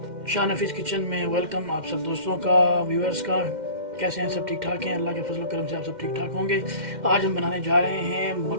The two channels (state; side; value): late; left; 2.1 ms